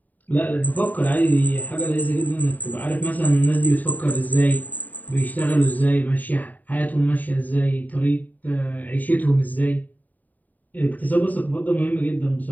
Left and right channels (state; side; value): late; right; 0.082 ms